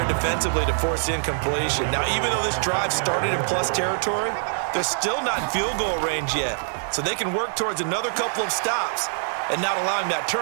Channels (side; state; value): left; silent; 57 dB below the other